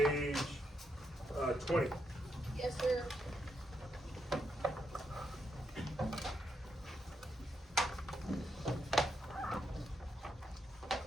20. Yes, sir.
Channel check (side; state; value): both; normal; correlation 0.81